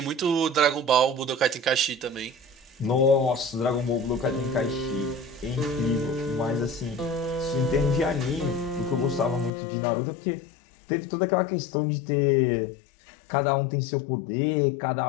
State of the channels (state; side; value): drops out; right; at 9.5 s